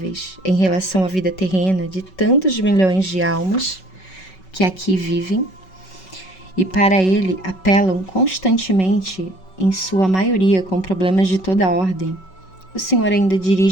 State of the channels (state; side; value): late; right; 5.3 ms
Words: em relação à vida terrena de tantos milhões de almas que aqui vivem, e para ele apelam constantemente, em sua maioria com problemas de toda a ordem, o Senhor ainda